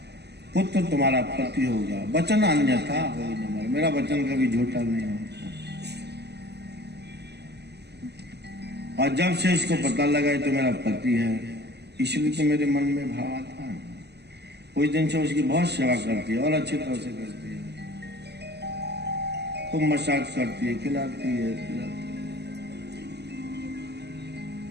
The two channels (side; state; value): left; late; 0.49 ms